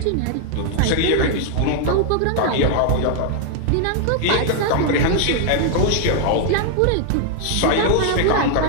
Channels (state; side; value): different; both; correlation 0.00